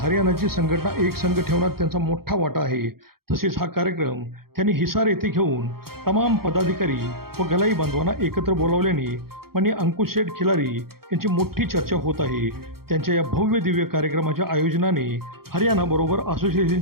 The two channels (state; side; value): late; left; 0.94 ms